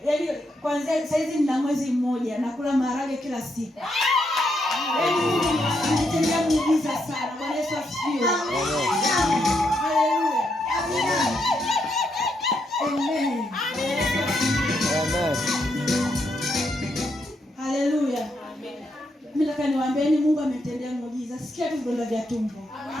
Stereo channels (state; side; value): normal; both; correlation 0.79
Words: Yaani kwanza saizi nina mwezi mmoja nakula maharage kila siku. Yaani nitendea muujiza sana. Bwana Yesu asifiwe. Haleluya. Amen. Amen. Haleluya. Mimi nataka niwaambieni Mungu ametendea muujiza. Sikia tu vidonda vya tumbo.